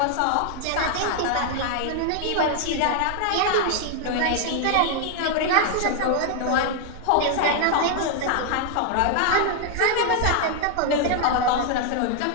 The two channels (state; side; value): different; both; correlation 0.00